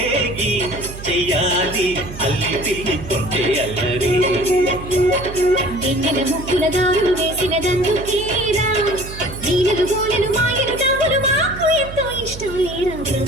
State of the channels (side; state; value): right; noise; hum, 12 dB below the sound